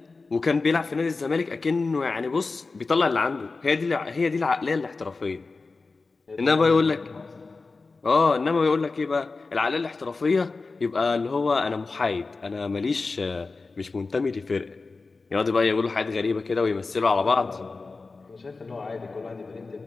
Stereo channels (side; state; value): right; quieter; 3.9 dB